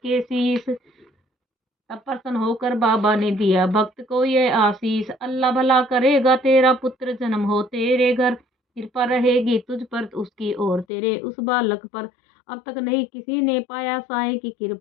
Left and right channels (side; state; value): right; drops out; at 10.9 s